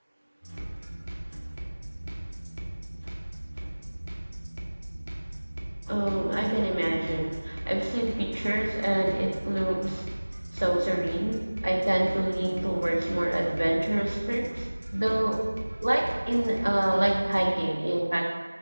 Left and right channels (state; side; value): inverted; both; correlation -1.00